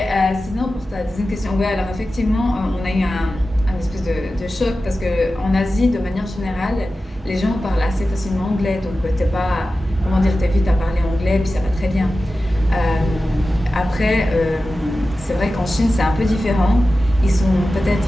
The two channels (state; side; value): normal; both; correlation 0.94